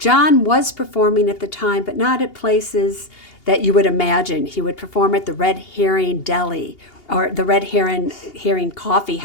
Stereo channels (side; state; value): right; late; 2.8 ms